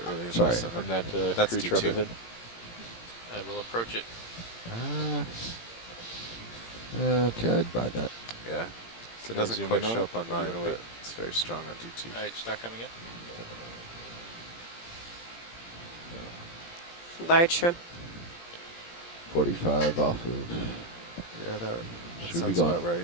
really in Sorry. my sonar. On that That's crew trap D2. ahead? I will approach it. Okay, I'd buy that. Yeah. So it Can I doesn't zoom quite in on show it, up on or do you mine, wanna wait? but it's very strong on D2. All right, start coming in. Large shrimp. 45 off of. Yeah, that Should be sounds going about right.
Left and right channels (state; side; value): late; right; 17 ms